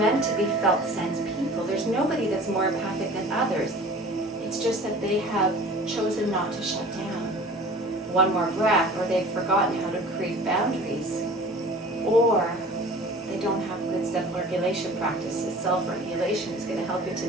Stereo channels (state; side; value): normal; both; correlation 0.43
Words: to be felt sense people. There's nobody that's more empathic than others. It's just that they have chosen not to shut down. 1 more breath, or they've forgotten how to create boundaries, or they don't have good self-regulation practices. Self-regulation is going to help you